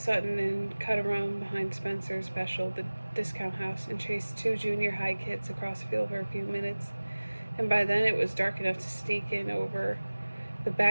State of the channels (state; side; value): inverted; both; correlation -1.00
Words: Sutton and cut around behind Spencer's Special, the discount house, and chased 2 junior high kids across the field for a few minutes. And by then it was dark enough to sneak in over the